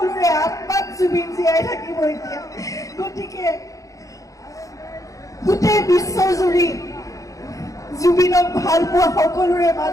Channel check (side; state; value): right; late; 0.16 ms